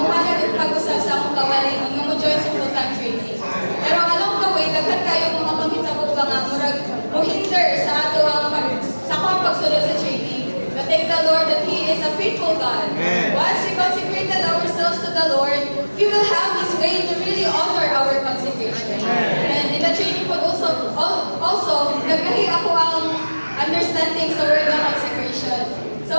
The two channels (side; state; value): both; inverted; correlation -1.00